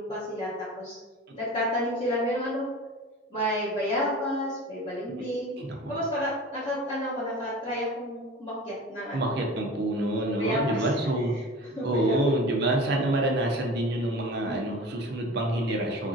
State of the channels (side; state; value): both; normal; correlation 0.38